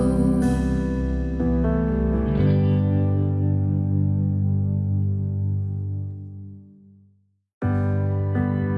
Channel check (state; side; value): identical; both; correlation 1.00